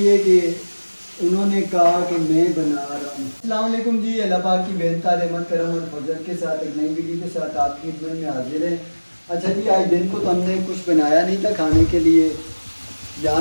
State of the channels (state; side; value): inverted; both; correlation -1.00